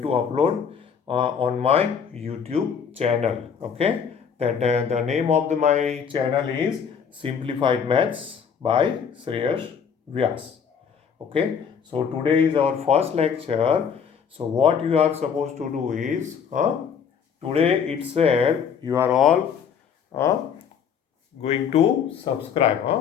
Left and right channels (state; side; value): quieter; right; 7.1 dB